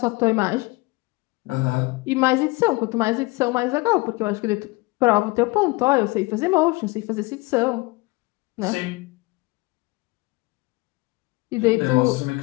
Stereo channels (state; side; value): quieter; right; 23.7 dB